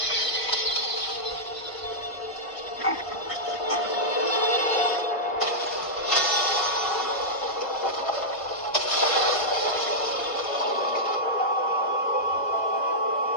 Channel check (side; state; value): right; late; 1.5 ms